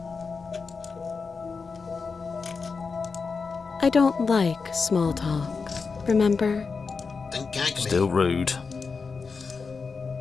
I don't like small talk, remember? Then gag me. Still rude.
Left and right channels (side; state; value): right; quieter; 4.9 dB